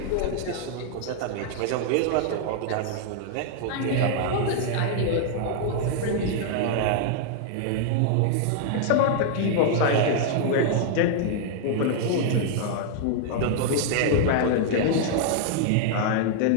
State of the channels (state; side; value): different; both; correlation -0.01